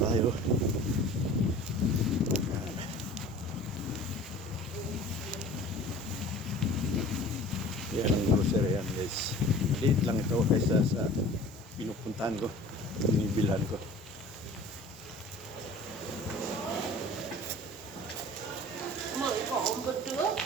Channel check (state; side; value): normal; both; correlation 0.44